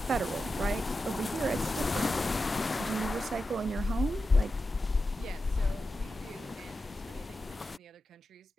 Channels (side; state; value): both; normal; correlation 0.91